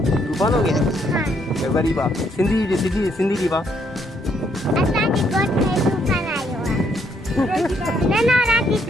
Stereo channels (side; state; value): both; normal; correlation 0.72